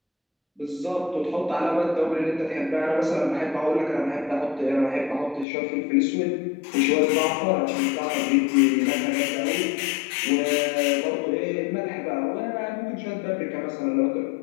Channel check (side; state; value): right; drops out; at 5.5 s